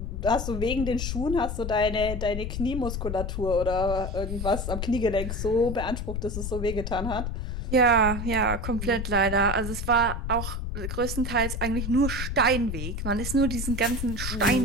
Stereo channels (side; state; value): left; noise; rumble, 4 dB below the sound